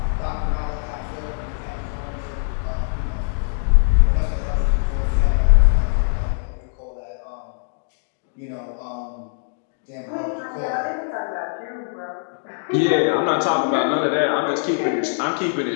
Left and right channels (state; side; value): silent; right; digital silence